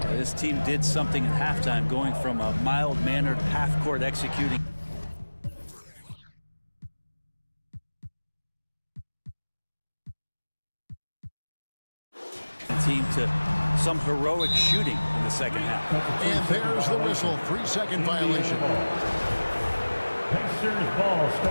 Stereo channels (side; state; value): both; inverted; correlation -1.00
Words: This team did something at halftime, going from a mild-mannered half-court executing team to some heroic shooting in the second half. And there's the whistle. 3-second violation. Pacers ball